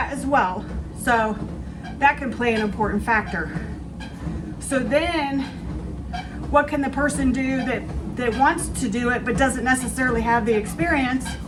as well. So that can play an important factor. So then, what can the person do that wants to do it but doesn't necessarily have the experience?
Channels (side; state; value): both; identical; correlation 1.00